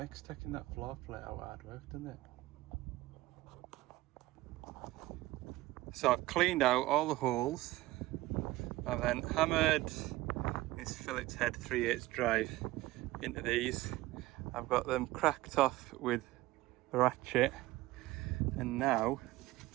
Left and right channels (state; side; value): quieter; left; 18.0 dB